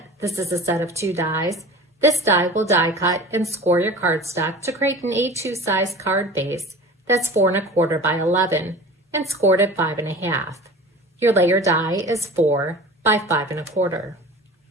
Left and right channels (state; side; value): normal; both; correlation 0.38